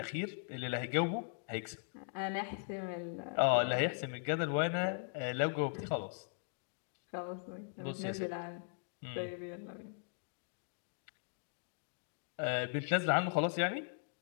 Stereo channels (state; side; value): silent; right; digital silence